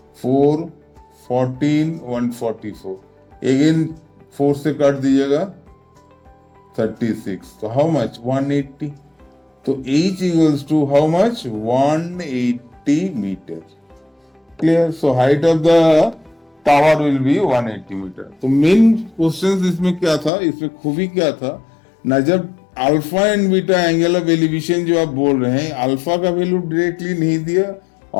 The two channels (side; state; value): right; drops out; at 20.3 s